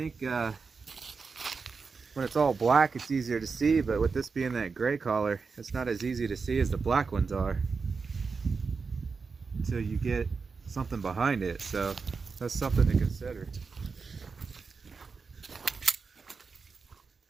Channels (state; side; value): quieter; left; 4.9 dB